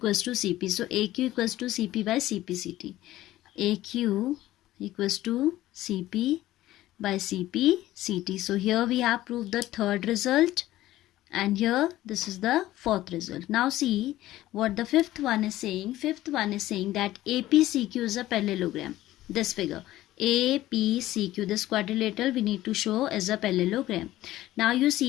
to C P. So A Q equals to C P by C P C T. A Q equals to C P by CP CT. So here we have proved the third result, and here this is the fourth result. Now see what the fifth one is saying. Fifth one is saying that APCQ is a parallelogram. This figure APCQ, this quadrilateral we need to show as a parallelogram. Now you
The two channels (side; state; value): right; quieter; 15.3 dB